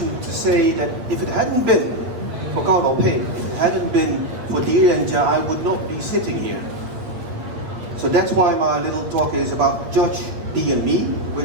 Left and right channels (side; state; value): left; late; 8.5 ms